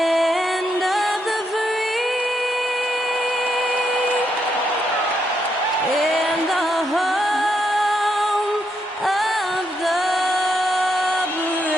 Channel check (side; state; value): both; normal; correlation 0.79